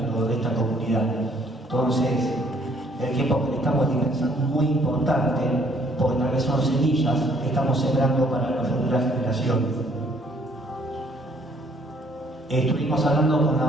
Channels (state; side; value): normal; both; correlation 0.63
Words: de esta comunidad. Entonces, el tiempo que le estamos dispensando es muy importante, porque tal vez son semillas que estamos sembrando para las futuras generaciones. Estuvimos hablando con la